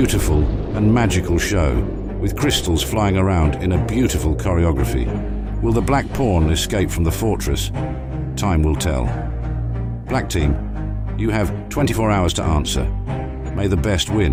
and magical show, with crystals flying around in a beautiful choreography. Will the Black pawn escape from the fortress? Time will tell. Black team, you have 24 hours to answer. May the best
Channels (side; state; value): both; identical; correlation 1.00